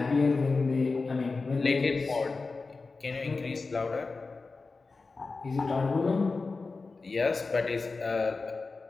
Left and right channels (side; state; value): right; quieter; 4.0 dB